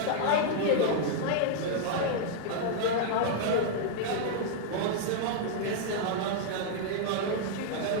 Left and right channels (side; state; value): both; different; correlation -0.01